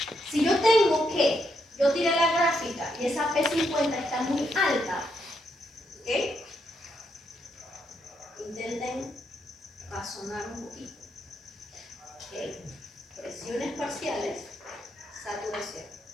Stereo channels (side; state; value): both; normal; correlation 0.79